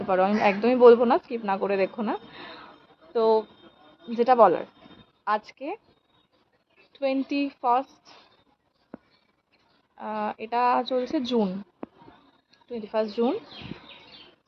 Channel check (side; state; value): both; identical; correlation 1.00